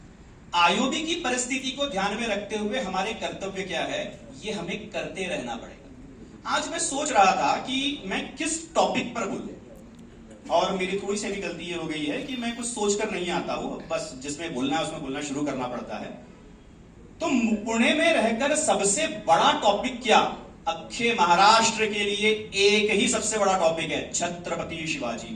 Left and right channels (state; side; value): identical; both; correlation 1.00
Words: आईओबी की परिस्थिति को ध्यान में रखते हुए हमारे कर्तव्य क्या है, ये हमें करते रहना पड़ेगा। आज मैं सोच रहा था कि मैं किस टॉपिक पर बोलूं, और मेरी थोड़ी सी भी गलती ये हो गई है कि मैं कुछ सोचकर नहीं आता हूं, बस जिसमें बोलना है उसमें बोलना शुरू करना पड़ता है। तो पुणे में रहकर सबसे बड़ा टॉपिक क्या, अक्षय महाराष्ट्र के लिए एक ही सबसे बड़ा टॉपिक है, छत्रपति शिवाजी